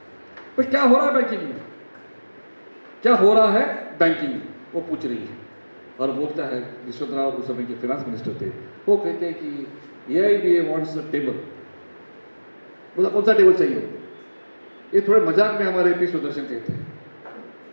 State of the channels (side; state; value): both; inverted; correlation -1.00